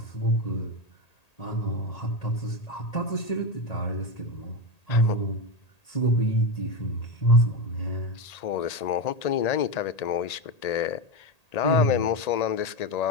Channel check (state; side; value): late; right; 1.8 ms